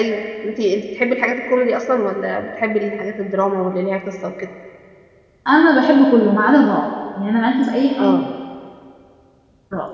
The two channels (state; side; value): identical; both; correlation 1.00